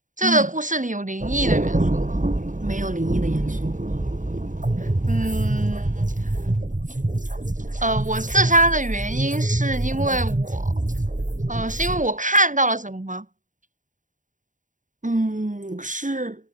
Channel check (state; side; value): late; left; 0.37 ms